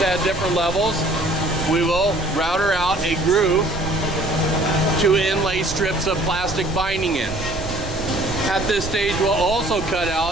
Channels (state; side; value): noise; right; rumble, 10 dB below the sound